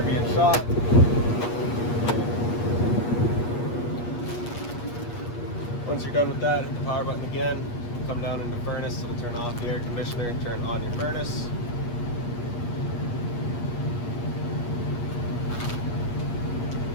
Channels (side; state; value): right; late; 8.4 ms